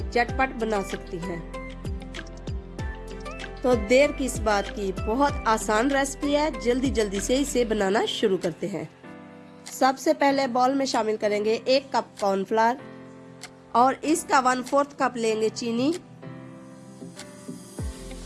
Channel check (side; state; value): both; identical; correlation 1.00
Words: झटपट बना सकती हैं। तो देर किस बात की, बहुत आसान रेसिपी है, जल्दी जल्दी से इसे बनाना शुरू करते हैं। सबसे पहले बाउल में शामिल करेंगे 1 कप कॉर्नफ्लावर और इसका 1/4 कप लेंगे चीनी